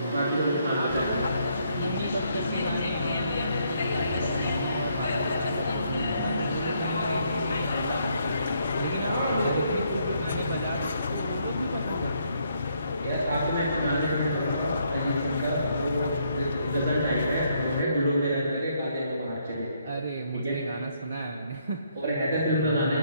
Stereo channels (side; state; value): both; inverted; correlation -0.72